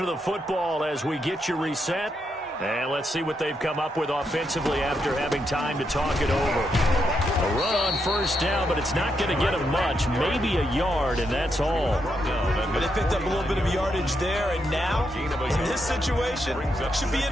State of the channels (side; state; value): both; normal; correlation 0.81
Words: of the football as we get you reset. And let's see what they've come up with offensively after having time to talk it over. A run on first down, but it's not going to get them much. Maybe a yard, and that's all. But they picked up a little bit of yardage there, and now, in this situation, should be